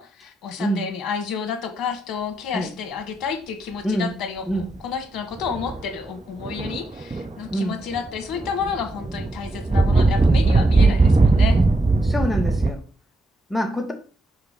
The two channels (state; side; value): normal; both; correlation 0.82